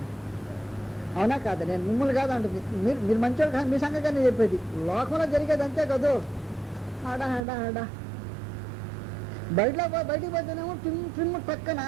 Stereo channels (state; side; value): drops out; left; at 7.4 s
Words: అవునా కాదు? నేను మిమ్మల్ని కాదు అంటుంది, మీరు మంచివాళ్ళు కాదు, మీ సంగతి నేను చెప్పేది. లోకంలో జరిగేది అంతే కదూ. ఆడా ఆడా ఆడా బయటికి పోతేనేమో ట్రిమ్ పక్కన,